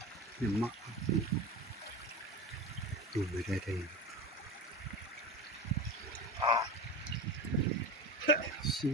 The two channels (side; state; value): both; normal; correlation 0.27